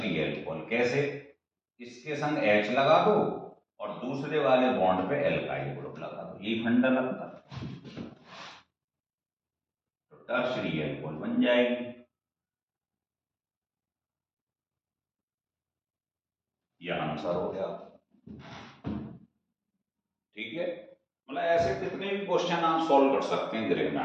अल्कोहल, कैसे, इसके संग H लगा दो और दूसरे वाले बॉन्ड पे एल्काइल ग्रुप लगा दो, यही फंडा लगता है, तो टर्शियरी अल्कोहल बन जाएगी। यह आंसर हो गया, ठीक है। मतलब ऐसे कितने भी क्वेश्चन आप सॉल्व कर सकते हैं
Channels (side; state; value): both; identical; correlation 1.00